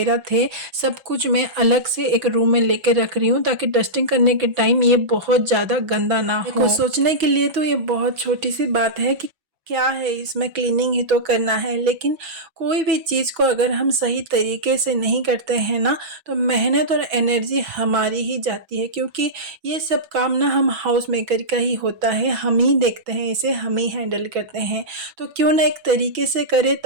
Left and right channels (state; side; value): late; left; 6.1 ms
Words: थे, सब कुछ मैं अलग से एक रूम में लेके रख रही हूँ ताकि डस्टिंग करने के टाइम ये बहुत ज़्यादा गंदा ना हो। देखो, सोचने के लिए तो ये बहुत छोटी सी बात है कि क्या है इसमें, क्लीनिंग ही तो करना है, लेकिन कोई भी चीज़ को अगर हम सही तरीके से नहीं करते हैं ना, तो मेहनत और एनर्जी हमारी ही जाती है, क्योंकि ये सब काम ना हम हाउस मेकर का ही होता है, हम ही देखते हैं इसे, हम ही हैंडल करते हैं। तो क्यों ना एक तरीके से करें